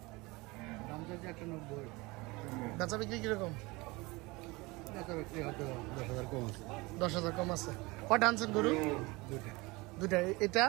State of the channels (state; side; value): quieter; left; 23.7 dB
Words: বেচা বিক্রি কিরকম 10,000 কম আছে কয়টা আনছেন গরু দুটা এটা